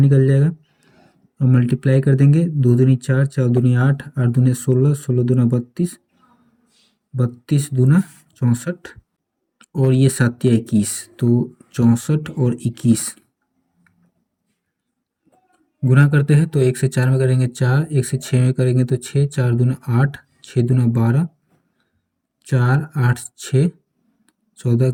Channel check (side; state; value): both; identical; correlation 1.00